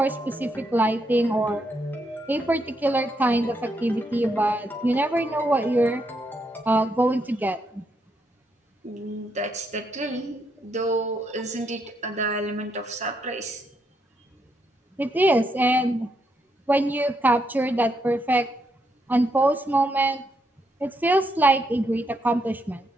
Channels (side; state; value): both; normal; correlation 0.78